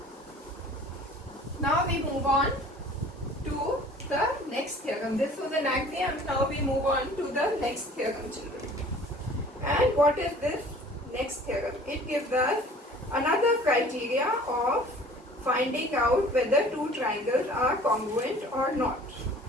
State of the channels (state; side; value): normal; both; correlation 0.48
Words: Now we move on to the next theorem. This was an axiom. Now we move on to the next theorem, children. And what is this next theorem? It gives us another criteria of finding out whether two triangles are congruent or not.